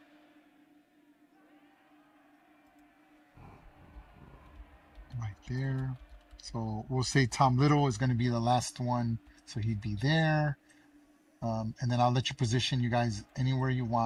right there. So we'll say Tom Little is going to be the last one. So he'd be there. And then I'll let you position you guys anywhere you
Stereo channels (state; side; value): identical; both; correlation 1.00